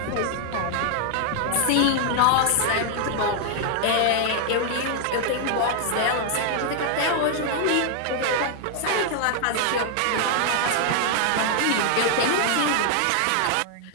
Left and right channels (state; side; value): different; both; correlation 0.00